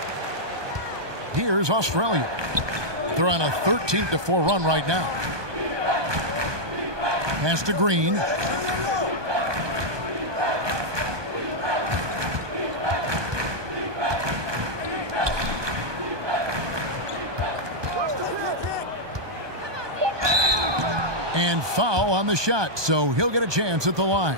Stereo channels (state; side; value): late; left; 1.2 ms